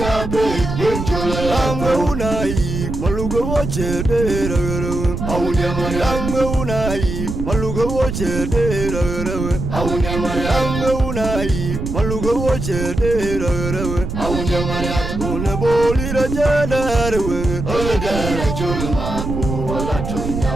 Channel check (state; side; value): noise; right; rumble, 4 dB below the sound